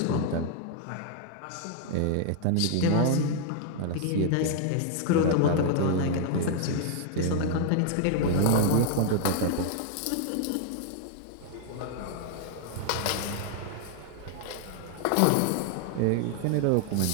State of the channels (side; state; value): both; different; correlation -0.01